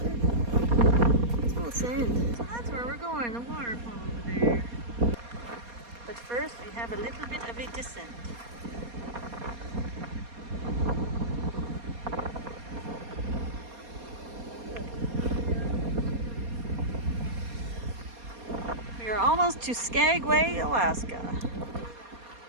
It's full of sand. So that's where we're going, the waterfall over there. But first we have a little bit of a descent. We are almost to Skagway, Alaska.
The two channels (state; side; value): late; left; 4.2 ms